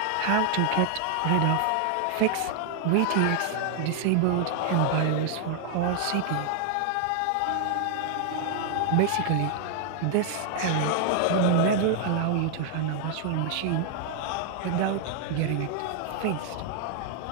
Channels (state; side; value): different; both; correlation 0.00